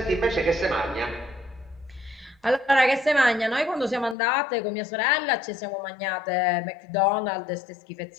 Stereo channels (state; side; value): drops out; right; at 4.2 s